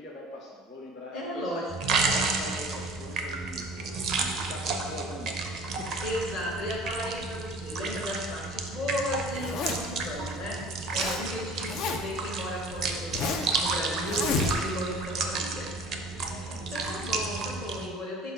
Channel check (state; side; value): normal; both; correlation 0.45